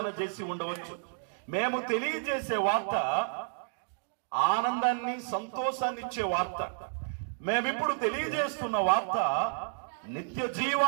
చేసి ఉండవచ్చు. మేము తెలియజేసే వార్త ఆనందాన్ని, సంతోషాన్ని ఇచ్చే వార్త. మేమిప్పుడు తెలియజేస్తున్న వార్త నిత్య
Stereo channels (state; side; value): silent; left; digital silence